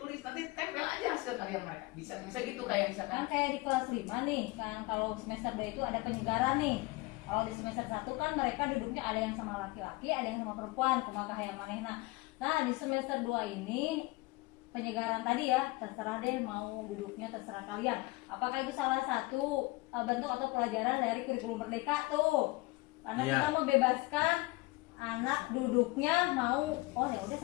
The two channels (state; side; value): quieter; right; 22.6 dB